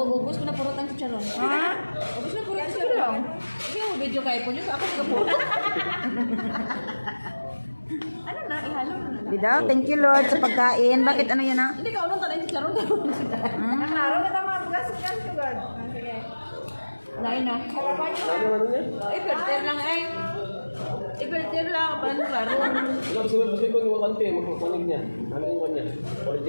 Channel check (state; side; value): inverted; both; correlation -1.00